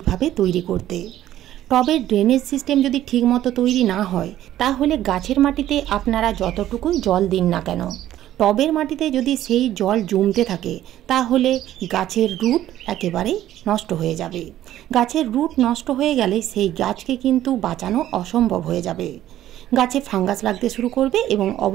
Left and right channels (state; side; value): quieter; left; 12.9 dB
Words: তৈরি করতে। টবের ড্রেনেজ সিস্টেম যদি ঠিকমতো তৈরি না হয়, তাহলে গাছের মাটিতে আপনারা যতটুকুই জল দিন না কেন, টবের মাটিতে যদি সেই জল জমতে থাকে, তাহলে গাছের রুট একেবারেই নষ্ট হয়ে যাবে। গাছের রুট নষ্ট হয়ে গেলে সেই গাছকে কিন্তু বাঁচানো অসম্ভব হয়ে যাবে। গাছে ফাঙ্গাস লাগতে শুরু করবে এবং